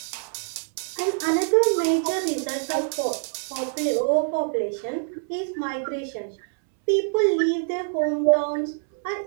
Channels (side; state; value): left; silent; 62 dB below the other